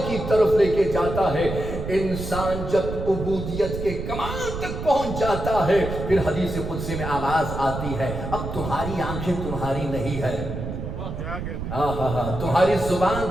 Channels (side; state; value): right; noise; rumble, 6 dB below the sound